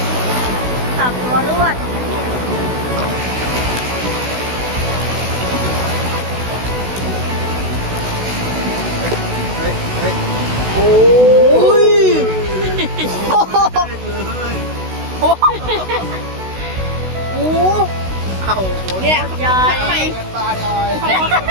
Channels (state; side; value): late; left; 16 ms